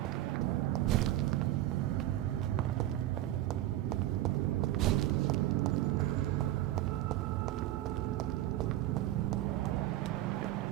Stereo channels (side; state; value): left; quieter; 14.4 dB